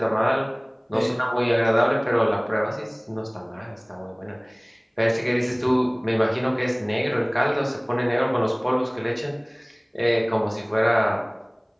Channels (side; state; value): both; identical; correlation 1.00